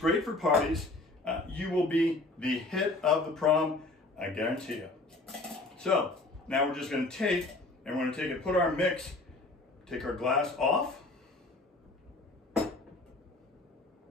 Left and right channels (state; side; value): quieter; right; 3.0 dB